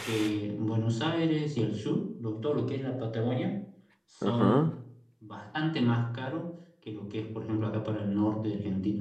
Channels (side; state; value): both; identical; correlation 1.00